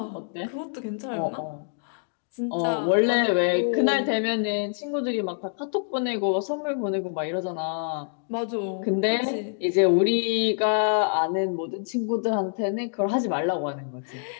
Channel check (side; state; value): right; silent; digital silence